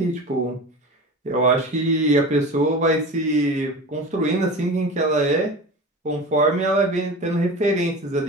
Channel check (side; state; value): both; normal; correlation 0.32